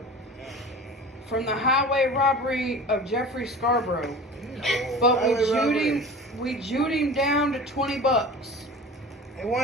From the highway robbery of Jeffrey Scarborough. But we jewed him down to $20. He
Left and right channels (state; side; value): normal; both; correlation 0.37